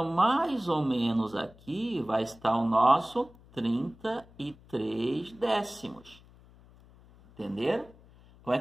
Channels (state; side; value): noise; left; hum, 25 dB below the sound